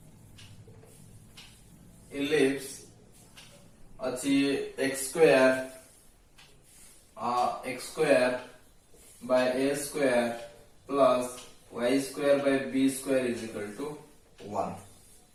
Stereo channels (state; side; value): identical; both; correlation 1.00